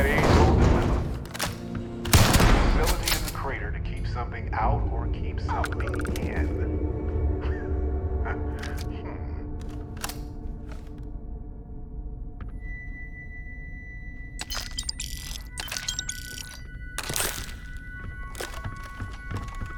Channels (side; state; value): both; identical; correlation 1.00